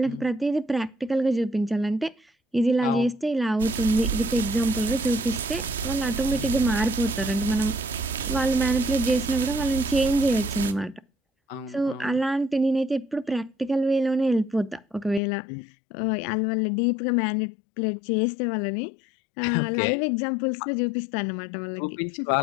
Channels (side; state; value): right; drops out; at 15.2 s